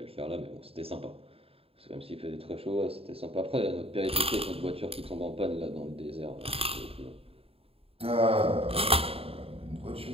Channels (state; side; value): late; left; 0.28 ms